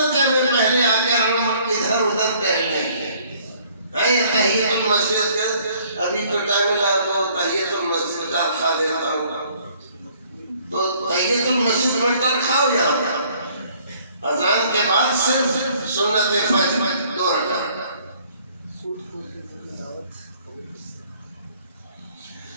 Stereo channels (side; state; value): both; inverted; correlation -0.60